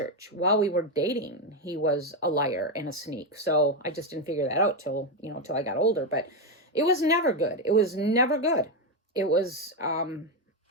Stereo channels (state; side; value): normal; both; correlation 0.08